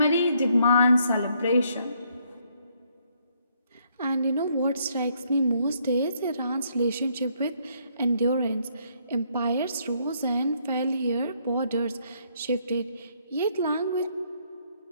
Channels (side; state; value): both; inverted; correlation -0.70